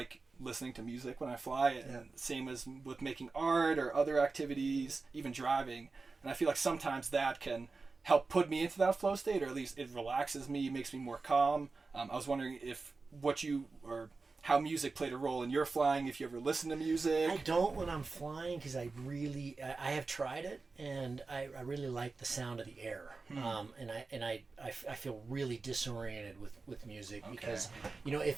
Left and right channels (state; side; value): quieter; left; 4.0 dB